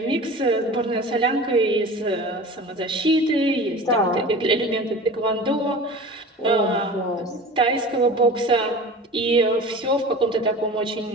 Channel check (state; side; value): normal; both; correlation 0.37